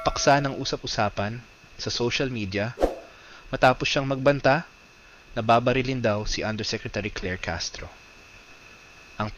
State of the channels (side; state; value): both; identical; correlation 1.00